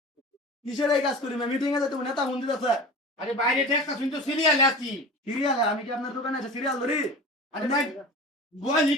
কিসের এই কাজ করি মিটিং এ তুমি নেতা মন্দির আছে আরে বাইরে ঠেকা শুনতে সিরিয়াল আছি। সিরিয়াল আমি কি আপনার দোকানে আছে সিরিয়াল ধরি আরে ভাই বল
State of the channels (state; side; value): normal; both; correlation 0.34